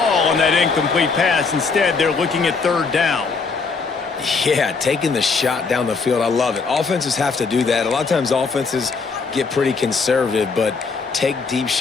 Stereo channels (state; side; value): quieter; right; 4.7 dB